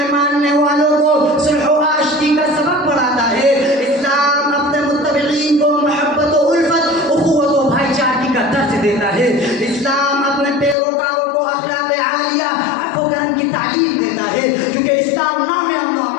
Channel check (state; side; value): drops out; right; at 10.8 s